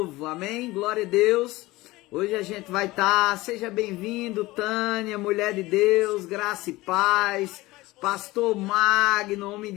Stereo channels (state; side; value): quieter; right; 19.6 dB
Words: amém? Glória a Deus. Hoje a gente vai estar, seja bem-vindo, Tânia, mulher de Deus, graça e paz, pastor Magno, homem